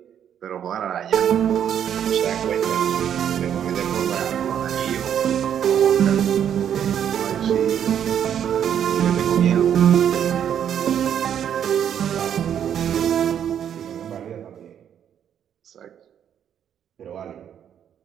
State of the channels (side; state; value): left; quieter; 9.2 dB